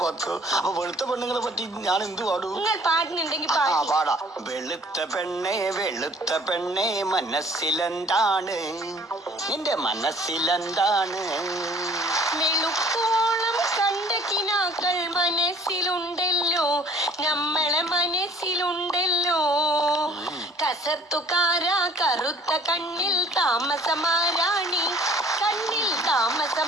പാത്തു. അപ്പൊ വെളുത്ത പെണ്ണുങ്ങളെ പറ്റി ഞാൻ എന്ത് പാടും? നിങ്ങൾ പാടുന്നുണ്ടെങ്കിൽ പാടാ. വെളുത്ത പെണ്ണേ മനസ്സിലെന്താണ്? നിന്റെ മനസ്സിലെന്താണ്? വെളുപ്പോളം കണ്ട കിനാക്കൾ മനസ്സിലുണ്ടല്ലോ, നമ്മളെ മനസ്സിലുണ്ടല്ലോ. കസർത്തുകാരാ കറുത്ത കണ്ണിൽ താമസമാരാണി, കണ്ണിൽ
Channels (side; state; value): both; normal; correlation 0.54